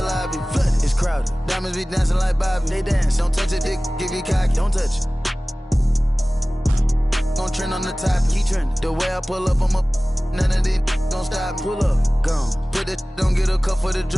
lobby. Flooded. It's crowded. Diamonds be dancing like Bobby. They dance. Don't touch it, dick. Give you cocky. Don't touch it. Gon' trend on the top. Keep trending. The way I pull up, I'm up. None of these gon' stop. Pull up. Gone. Put that. Don't get a cup for the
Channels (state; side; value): normal; both; correlation 0.98